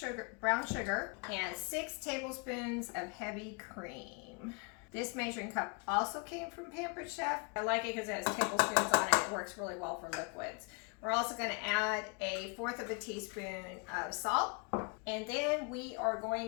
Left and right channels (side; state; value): right; quieter; 34.0 dB